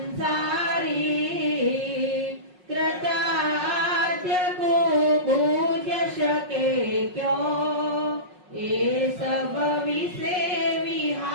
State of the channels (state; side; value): late; left; 5.5 ms